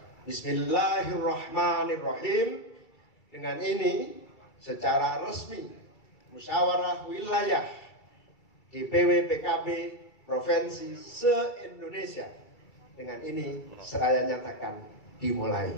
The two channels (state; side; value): late; right; 2.3 ms